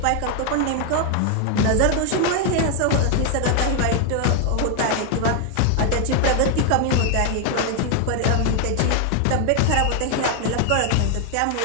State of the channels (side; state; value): both; different; correlation 0.01